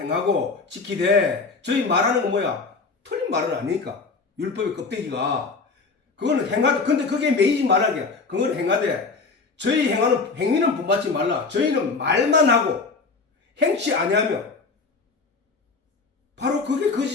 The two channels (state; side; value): quieter; right; 4.3 dB